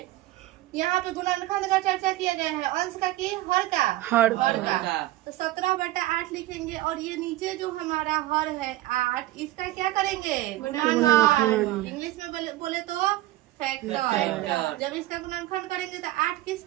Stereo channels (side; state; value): left; quieter; 16.6 dB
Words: यहाँ पे गुणनखंड का चर्चा किया गया है, अंश का कि हर का। तो 17/8 लिखेंगे और ये नीचे जो हमारा हर है 8, इसका क्या करेंगे, गुणनखंड। इंग्लिश में बोले तो फैक्टर। जब इसका गुणनखंड करेंगे तो 8 किस